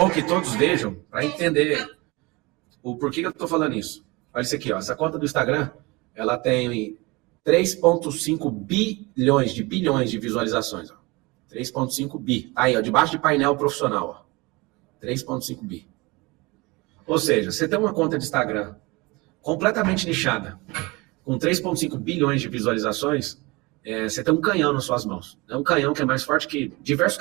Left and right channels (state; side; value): quieter; left; 24.5 dB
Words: que todos vejam para entender o porquê que eu tô falando isso. Olha isso aqui, ó. Essa conta do Instagram, ela tem 3,5 bilhões de visualizações, ó. 3,5 bi. Aí, ó, debaixo de painel profissional, ó. 3,5 bi. Ou seja, você tem uma conta de Instagram completamente nichada, com 3,5 bilhões de visualizações, você tem um canhão nas suas mãos. É um canhão que é mais forte que diversos